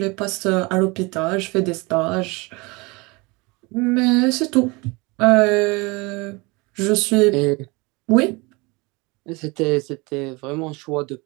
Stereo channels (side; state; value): left; quieter; 26.1 dB